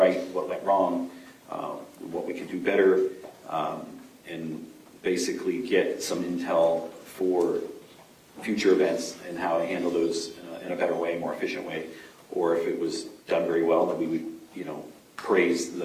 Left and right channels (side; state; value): both; identical; correlation 1.00